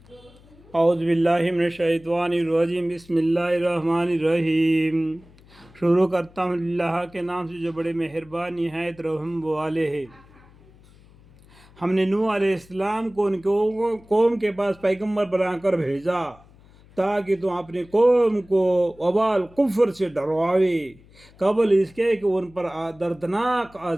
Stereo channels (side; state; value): left; noise; hum, 26 dB below the sound